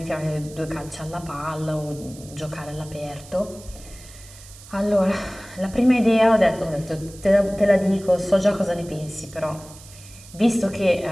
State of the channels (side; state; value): right; noise; hiss, 20 dB below the sound